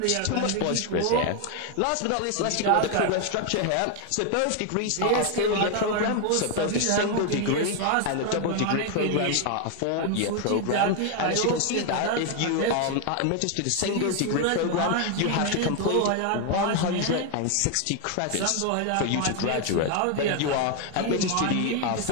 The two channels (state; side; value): different; both; correlation 0.01